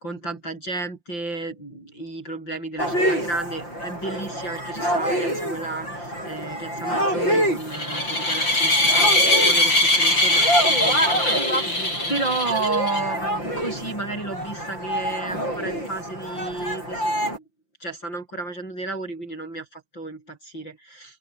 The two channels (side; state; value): right; late; 5.8 ms